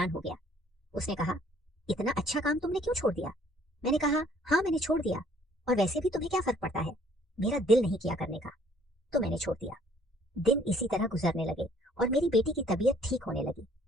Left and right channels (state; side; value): normal; both; correlation 0.60